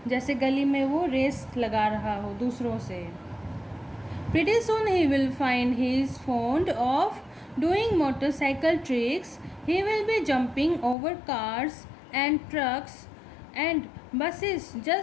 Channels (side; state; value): right; drops out; at 11.0 s